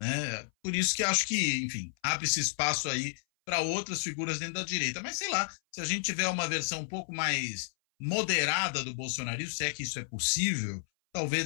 né? Por isso que acho que, enfim, abre-se espaço aí para outras figuras dentro da direita. Mas sei lá, se a gente tiver uma versão um pouco mais moderada do bolsonarismo, se é que isso é possível,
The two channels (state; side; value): silent; right; 57 dB below the other